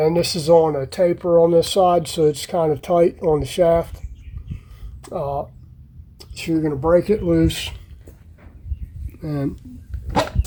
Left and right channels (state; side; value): identical; both; correlation 1.00